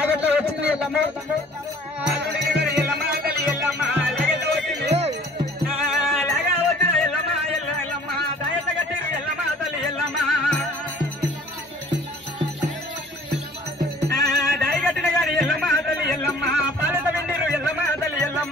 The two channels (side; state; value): both; normal; correlation 0.52